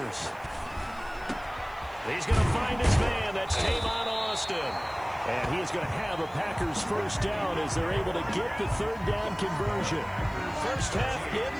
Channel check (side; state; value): right; noise; hiss, 27 dB below the sound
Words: He's going to find his man. That's Tavon Austin. And he is going to have a Packers 1st down as they're able to get the 3rd down conversion. First half